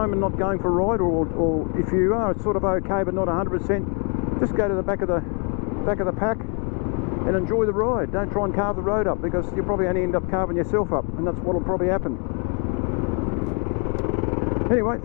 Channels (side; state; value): right; quieter; 37.5 dB